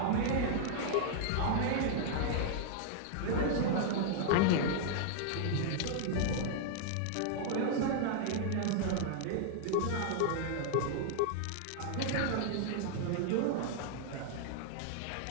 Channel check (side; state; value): both; different; correlation -0.01